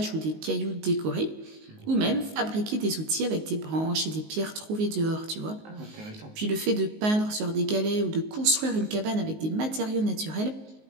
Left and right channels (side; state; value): left; late; 19 ms